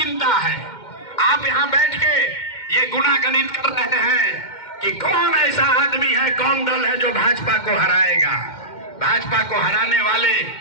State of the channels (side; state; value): right; late; 2.1 ms